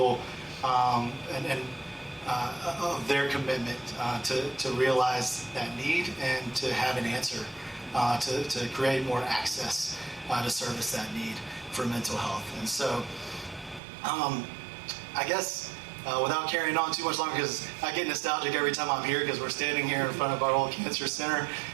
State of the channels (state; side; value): drops out; left; at 13.8 s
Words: of their commitment to realize that need and to have an answer to create more access to service that need for mental health. And so I guess without carrying on too much longer, because I get nostalgic every time I'm here because we're standing here in front of our old cancer center,